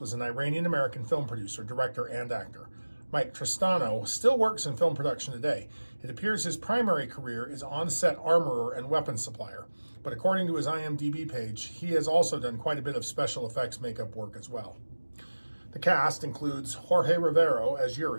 was an Iranian-American film producer, director, and actor. Mike Tristano still works in film production today. It appears his primary career is on-set armorer and weapons supplier, but according to his IMDb page, he has also done quite a bit of special effects makeup work as well. The cast includes Jorge Rivero as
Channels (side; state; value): both; inverted; correlation -1.00